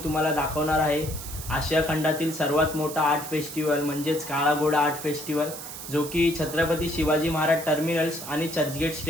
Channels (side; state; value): right; noise; hiss, 10 dB below the sound